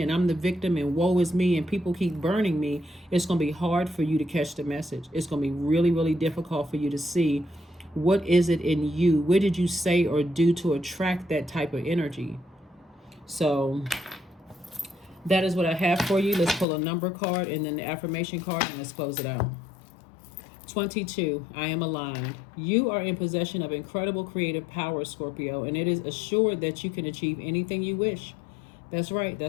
and I'm the victim and woe is me and people keep burning me. It's going to be hard for you to catch the message. It's going to be really, really difficult for you to see what is it in you. What did you say or do to attract that type of energy? So that is what I have for you. Let's pull a number card and then the affirmation card, and let's close it out. 22, I am aligned. You are in possession of incredible creative power, Scorpio, and it is assured that you can achieve anything you wish. That's right.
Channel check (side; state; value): right; drops out; at 16.7 s